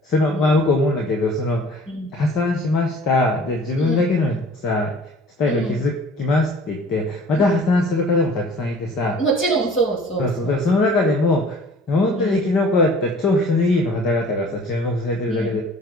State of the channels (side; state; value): both; normal; correlation 0.49